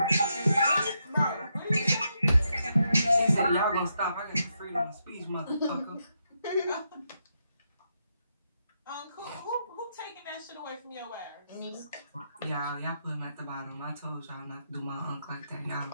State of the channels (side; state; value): both; inverted; correlation -0.81